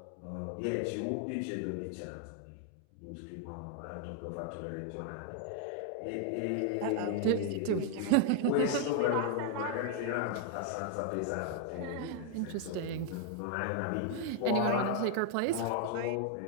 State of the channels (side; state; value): both; different; correlation 0.00